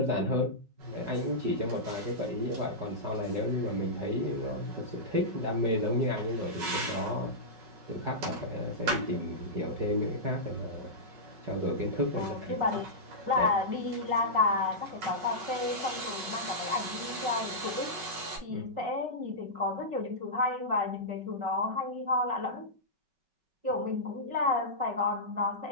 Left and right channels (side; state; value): left; late; 5.3 ms